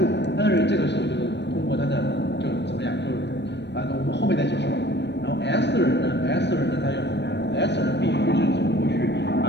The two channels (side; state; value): right; late; 0.50 ms